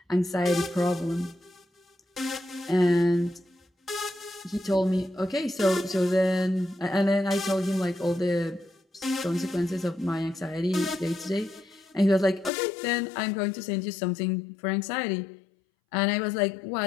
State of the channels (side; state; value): right; drops out; at 12.5 s